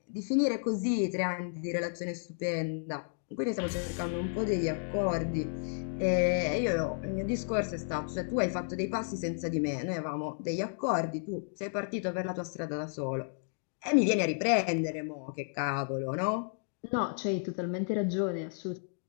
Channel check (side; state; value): right; silent; digital silence